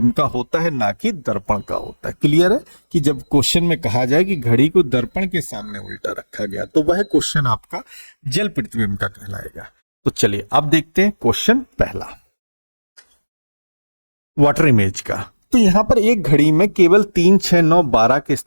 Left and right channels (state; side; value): inverted; both; correlation -1.00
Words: का होता है, ना कि दर्पण का होता है। क्लियर है? कि जब क्वेश्चन में कहा जाए कि घड़ी को दर्पण के सामने उल्टा रखा गया तो वह क्वेश्चन आपका जल प्रतिबिंब का कहलाएगा। तो चलिए अब देखते हैं क्वेश्चन पहला, वाटर इमेज का। तो यहां पर एक घड़ी में केवल 3, 6, 9, 12 के